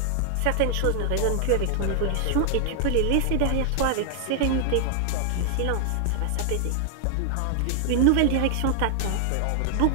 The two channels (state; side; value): different; both; correlation 0.00